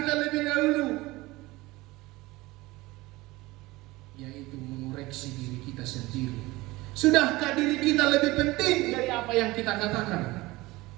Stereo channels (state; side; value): quieter; left; 20.2 dB